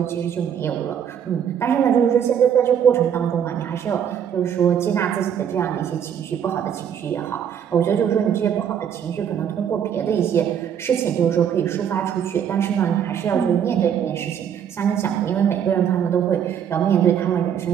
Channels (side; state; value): left; quieter; 8.6 dB